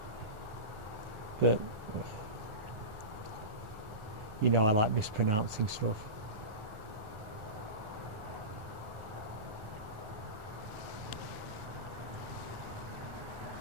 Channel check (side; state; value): left; late; 1.4 ms